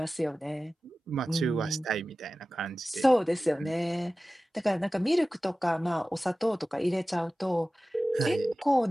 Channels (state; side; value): normal; both; correlation 0.96